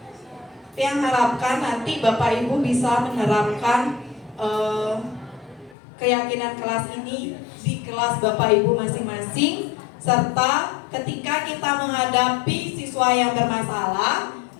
Yang harapkan nanti Bapak Ibu bisa menerapkan keyakinan kelas ini di kelas Bapak Ibu masing-masing, serta ketika kita menghadapi siswa yang bermasalah,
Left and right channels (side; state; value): right; drops out; at 5.8 s